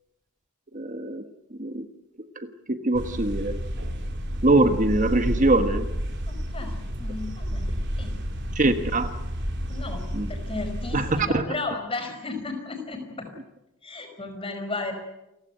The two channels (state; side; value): normal; both; correlation 0.53